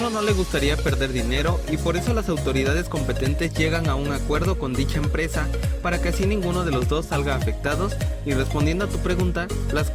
no le gustaría perder dinero y por eso las autoridades competentes llegan a un acuerdo con dicha empresa para que así ninguno de los dos salga afectados. Y respondiendo a tu pregunta, las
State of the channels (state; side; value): identical; both; correlation 1.00